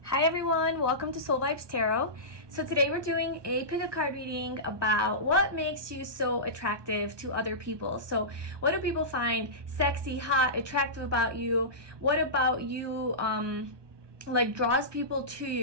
Hi everyone, welcome to Soul Vibes Tarot. So today we're doing a pick a card reading about what makes you so attractive to other people. So what do people find sexy, hot, attractive about you? What about you like draws people to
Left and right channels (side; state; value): left; late; 1.2 ms